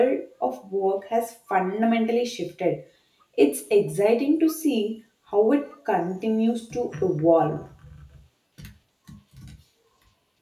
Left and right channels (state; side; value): identical; both; correlation 1.00